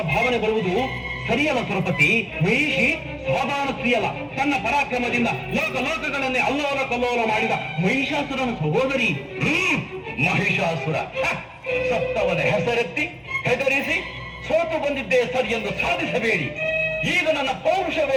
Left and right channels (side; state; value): both; identical; correlation 1.00